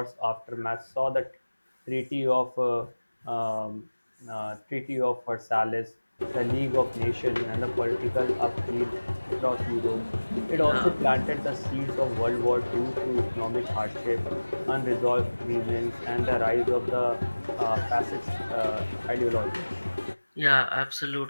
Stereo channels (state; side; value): inverted; both; correlation -1.00